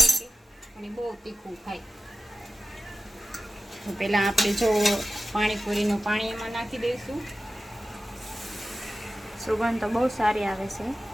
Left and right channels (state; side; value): normal; both; correlation 0.95